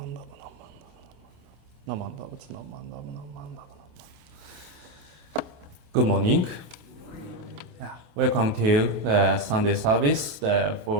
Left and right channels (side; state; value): left; late; 28 ms